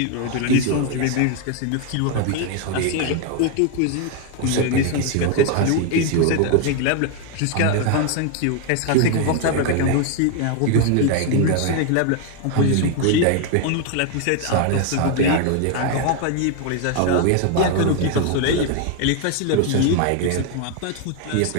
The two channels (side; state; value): both; different; correlation 0.01